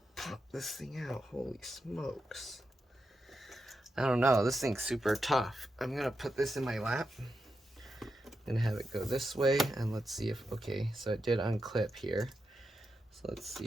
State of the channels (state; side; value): normal; both; correlation 0.87